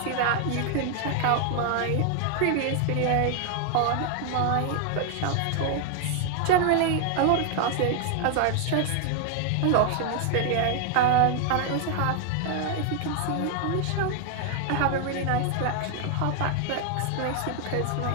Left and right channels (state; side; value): different; both; correlation 0.00